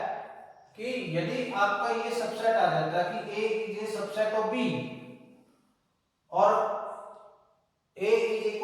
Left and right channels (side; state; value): both; identical; correlation 1.00